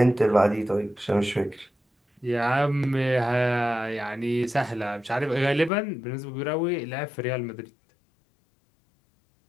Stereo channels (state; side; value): drops out; right; at 5.7 s